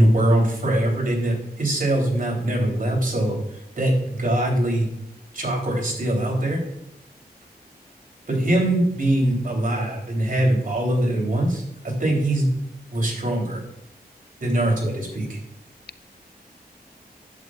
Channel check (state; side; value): normal; both; correlation 0.81